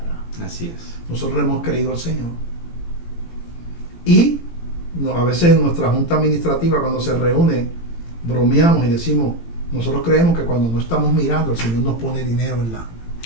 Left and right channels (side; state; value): right; late; 18 ms